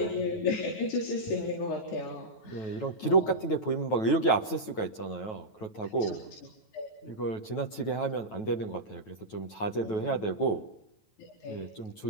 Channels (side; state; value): right; late; 9.2 ms